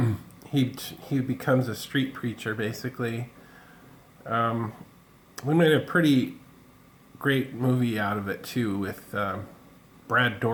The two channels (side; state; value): both; identical; correlation 1.00